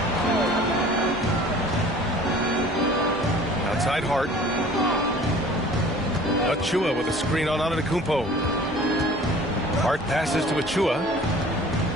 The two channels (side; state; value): both; normal; correlation 0.47